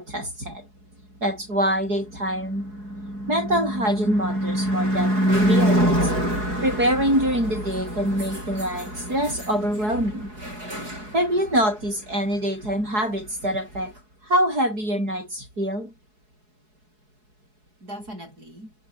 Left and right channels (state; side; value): late; left; 4.7 ms